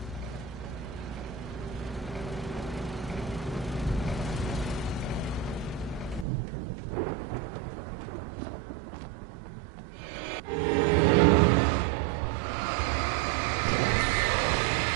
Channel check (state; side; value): drops out; left; at 6.2 s